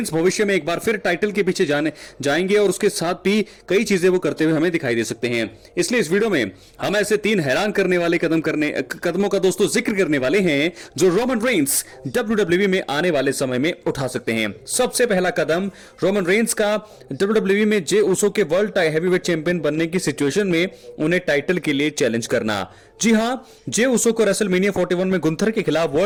भविष्य में एक बार फिर टाइटल के पीछे जाएंगे और उसके साथ भी कई चीजें वो करते हुए हमें दिखाई दे सकते हैं। इसलिए इस वीडियो में हम ऐसे 3 हैरान करने वाले कदमों का दोस्तों जिक्र करने वाले हैं जो रोमन रेंस WWE में आने वाले समय में उठा सकते हैं। सबसे पहला कदम रोमन रेंस का WWE में जे उसो के वर्ल्ड हैवीवेट चैंपियन बनने की सिचुएशन में उन्हें टाइटल के लिए चैलेंज करना। जी हां, जे उसो को रेसलमेनिया 41 में गुंथर के खिलाफ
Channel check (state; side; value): identical; both; correlation 1.00